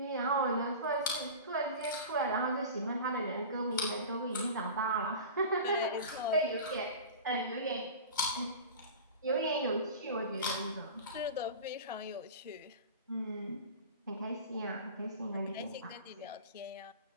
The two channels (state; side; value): inverted; both; correlation -0.34